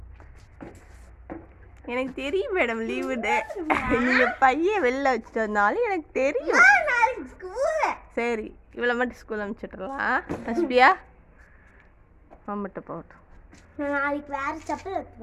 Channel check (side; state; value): both; identical; correlation 1.00